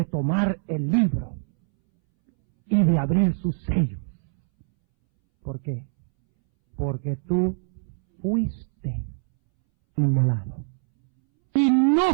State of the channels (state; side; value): silent; left; 63 dB below the other